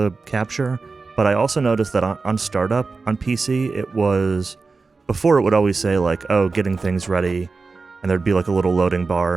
capture. But I also noticed that on startup on PC, it was, before it would always say like, oh, getting things ready, and there'd be like a little loading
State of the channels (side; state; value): left; quieter; 4.2 dB